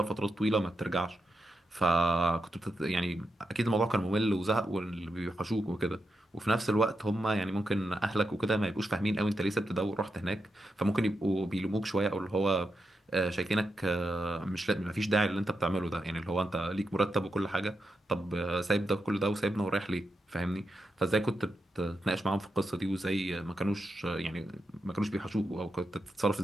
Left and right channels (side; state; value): both; normal; correlation 0.86